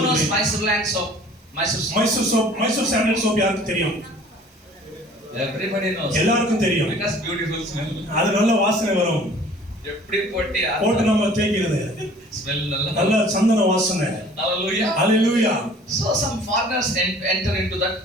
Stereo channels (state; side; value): normal; both; correlation 0.50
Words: Mysore land soap. Mysore sandal soap யாருக்கு தெரியும்? Everybody knows. எல்லாருக்கும் தெரியும். Because beautiful smell. அது நல்ல வாசனை வரும். எப்படி போட்டு நம்ம தேய்க்கிறது. Smell நல்ல சந்தன வாசனை. Hallelujah. Hallelujah. So some foreigners enter into that